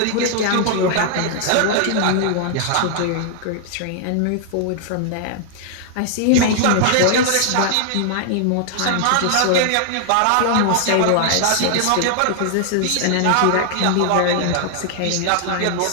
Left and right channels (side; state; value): both; different; correlation 0.00